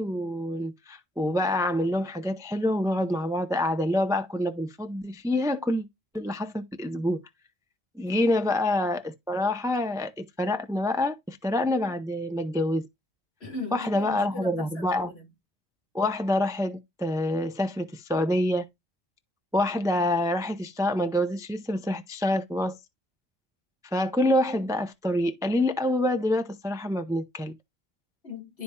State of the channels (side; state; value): both; normal; correlation 0.73